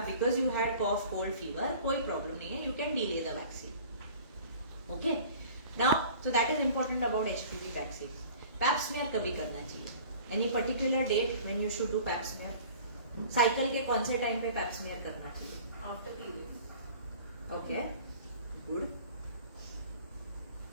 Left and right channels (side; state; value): both; inverted; correlation -0.46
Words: because you had cough cold fever, कोई प्रॉब्लम नहीं है, you can delay the vaccine. Okay, now so that is important about HPV vaccine. Pap smear कभी करना चाहिए? Any particular date when you should do pap smear? Cycle के कौन से time पे पैप स्मीयर करना चाहिए? After periods. Okay, good.